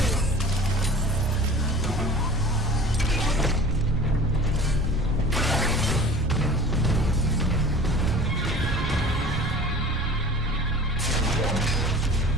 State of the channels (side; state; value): both; normal; correlation 0.42